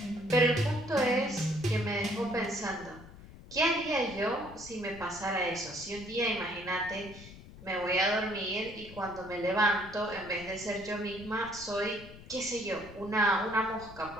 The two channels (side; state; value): left; noise; rumble, 17 dB below the sound